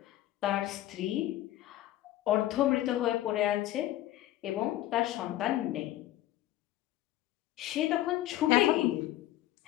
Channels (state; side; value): quieter; right; 14.5 dB